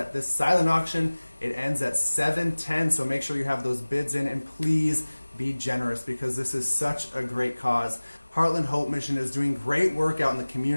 this silent auction, it ends at 7:10, so make sure you have those bids in, and please be generous because this is such a great cause. Heartland Hope Mission is doing great work out in the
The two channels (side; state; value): both; inverted; correlation -1.00